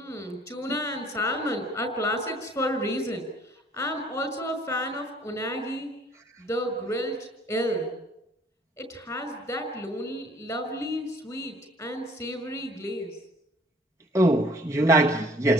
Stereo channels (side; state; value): both; normal; correlation 0.56